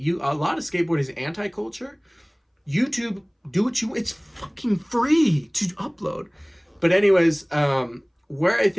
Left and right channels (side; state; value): both; identical; correlation 1.00